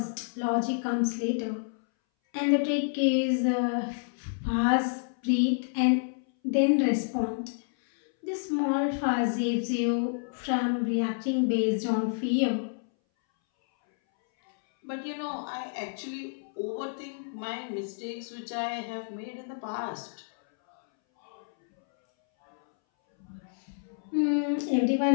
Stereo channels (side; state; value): right; silent; 59 dB below the other